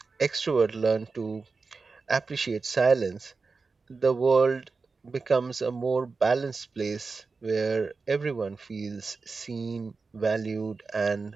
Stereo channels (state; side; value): quieter; left; 4.3 dB